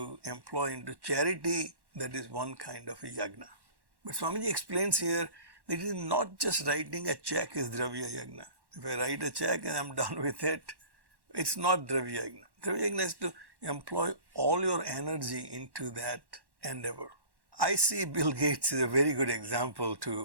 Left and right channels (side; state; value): left; late; 1.1 ms